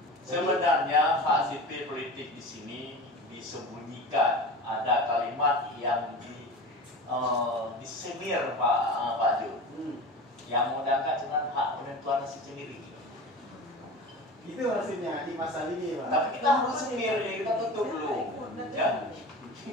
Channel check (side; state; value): both; normal; correlation 0.32